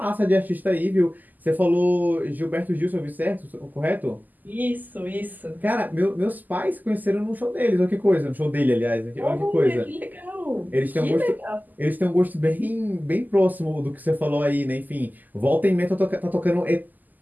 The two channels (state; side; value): late; left; 0.084 ms